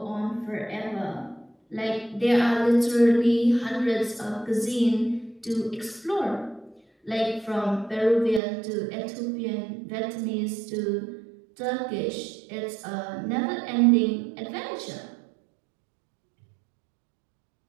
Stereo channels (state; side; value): drops out; left; at 8.4 s